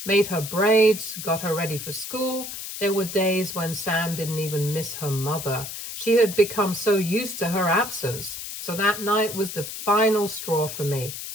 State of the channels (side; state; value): left; noise; hiss, 8 dB below the sound